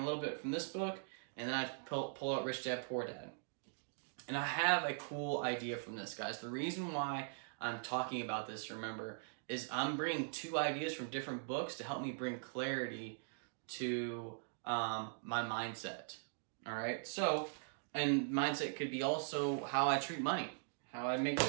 little bit from this book, and then I pull out Rich Dad, Poor Dad. And I have a cool idea from this, guys. The reason why I'm talking about this, remember, is I'm bringing two ideas from different books to help me bring clarity to my mindset. All right? So, and mindset could be also how I treat money, how I make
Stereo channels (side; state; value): left; silent; digital silence